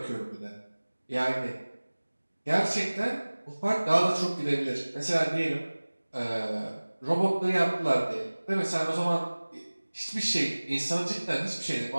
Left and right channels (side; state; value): both; inverted; correlation -1.00